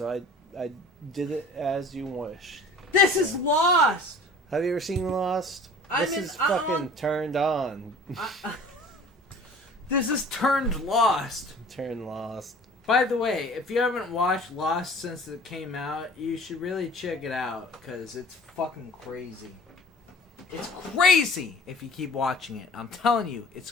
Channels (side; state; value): both; normal; correlation 0.45